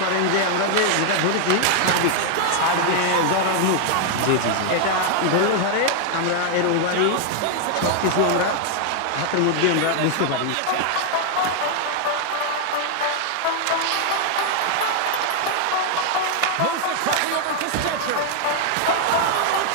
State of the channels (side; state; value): both; different; correlation 0.00